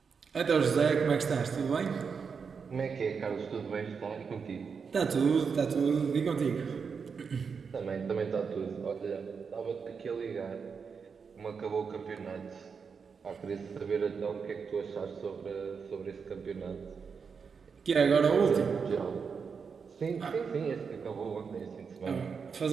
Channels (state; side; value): quieter; left; 5.8 dB